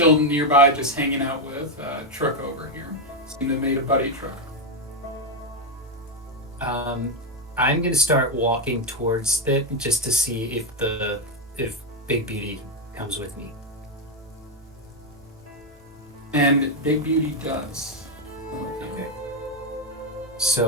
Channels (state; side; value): normal; both; correlation 0.05